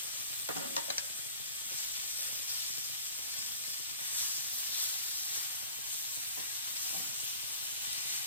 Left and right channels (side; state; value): both; inverted; correlation -0.43